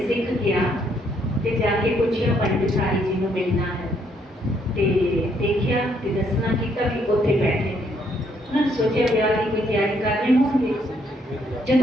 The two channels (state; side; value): normal; both; correlation 0.70